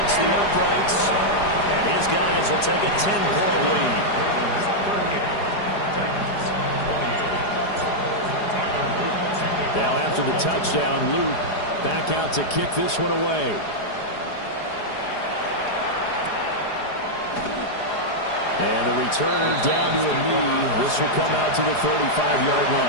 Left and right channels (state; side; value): late; right; 4.9 ms